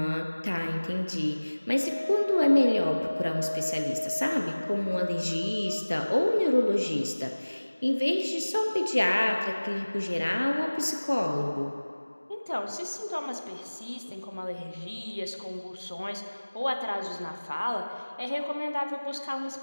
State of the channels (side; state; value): both; inverted; correlation -1.00